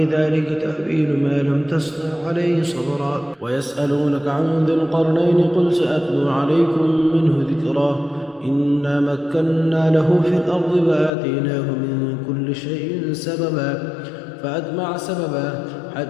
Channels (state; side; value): drops out; right; at 11.1 s